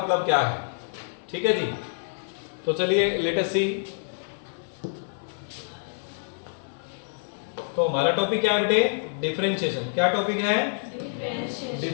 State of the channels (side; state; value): right; silent; 56 dB below the other